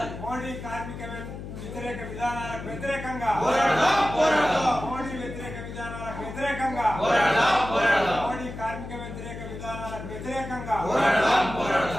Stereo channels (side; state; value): left; noise; hum, 10 dB below the sound